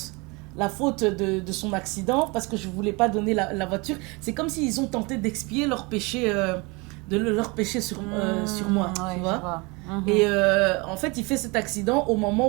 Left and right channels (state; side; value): quieter; left; 27.1 dB